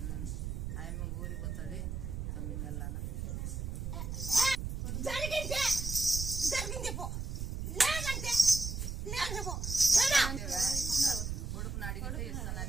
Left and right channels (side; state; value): right; noise; rumble, 4 dB below the sound